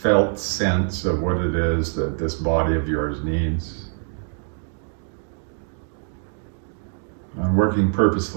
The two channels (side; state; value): left; silent; 58 dB below the other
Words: felt sense of what it is that this body of yours needs. And working